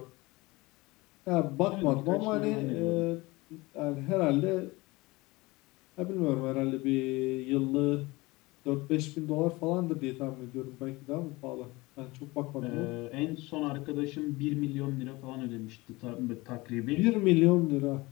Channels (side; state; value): right; quieter; 22.2 dB